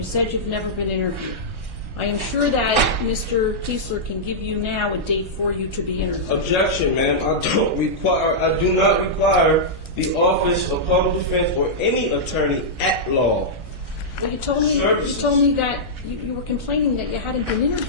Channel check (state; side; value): late; left; 1.4 ms